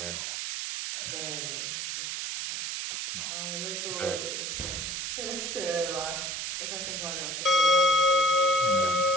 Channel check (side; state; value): right; noise; hiss, 3 dB below the sound